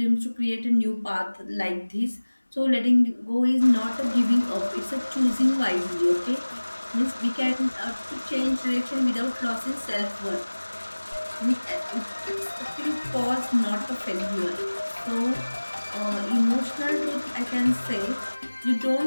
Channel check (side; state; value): both; inverted; correlation -1.00